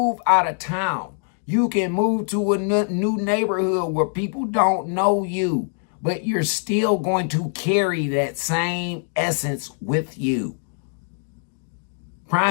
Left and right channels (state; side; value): silent; right; 63 dB below the other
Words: out of town. You can move to a new neighborhood where people don't know you, but you're still going to carry that same essence with you.